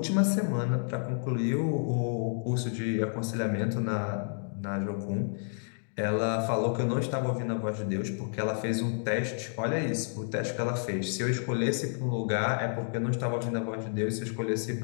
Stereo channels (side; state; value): right; silent; digital silence